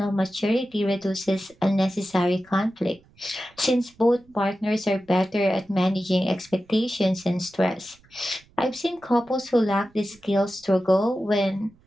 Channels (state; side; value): noise; right; rumble, 30 dB below the sound